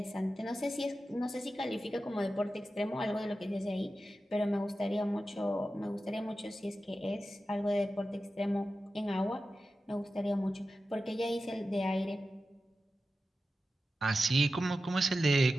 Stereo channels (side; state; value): both; normal; correlation 0.93